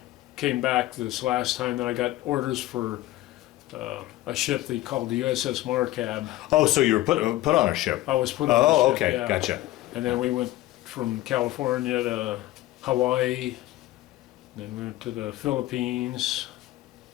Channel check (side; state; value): right; quieter; 16.1 dB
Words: came back this last time, then I got orders for a ship they called the USS Markab. Oh, so you were put on a ship. I was put on a Oh, ship, okay, yeah. gotcha. And then we went from California to Hawaii, then we went to the Philippines,